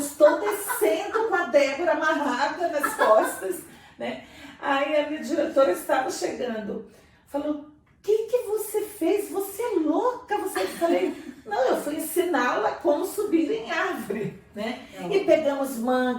descendo com a Débora amarrada nas costas, né? Aí a minha diretora estava chegando, falou, o que você fez? Você é louca? Eu falei, não, eu fui ensiná-la como subir em árvore, né? E pegamos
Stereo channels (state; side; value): identical; both; correlation 1.00